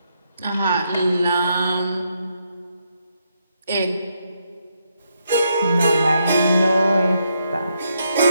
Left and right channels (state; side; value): inverted; both; correlation -0.78